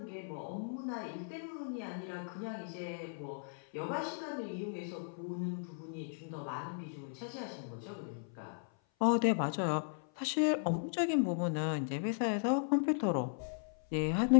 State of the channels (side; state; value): right; silent; 54 dB below the other